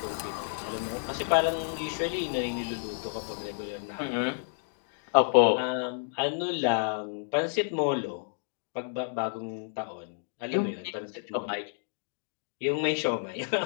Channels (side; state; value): right; silent; digital silence